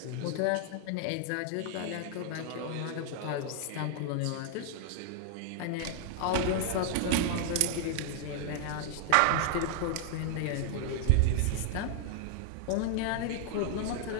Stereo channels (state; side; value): different; both; correlation 0.00